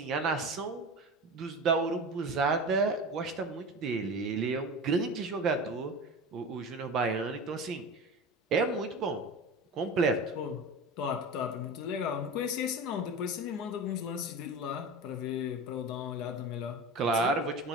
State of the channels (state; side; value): normal; both; correlation 0.30